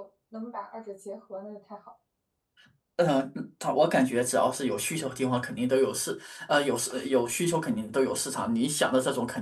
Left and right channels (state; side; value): identical; both; correlation 1.00